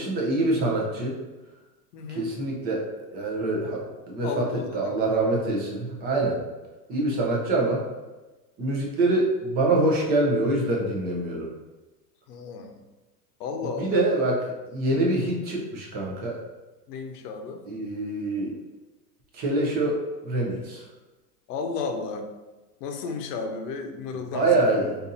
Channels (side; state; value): both; normal; correlation 0.18